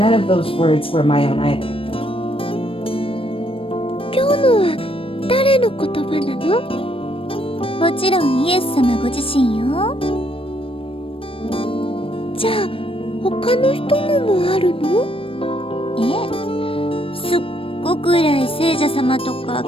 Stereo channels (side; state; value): right; late; 0.26 ms